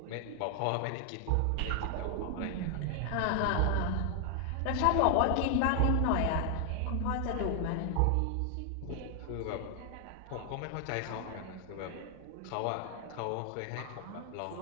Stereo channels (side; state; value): both; different; correlation 0.00